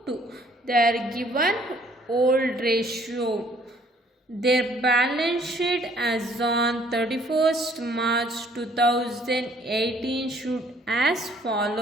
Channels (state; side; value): normal; both; correlation 0.61